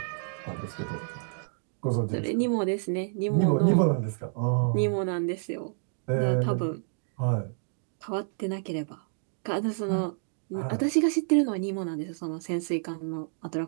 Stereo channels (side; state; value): left; silent; digital silence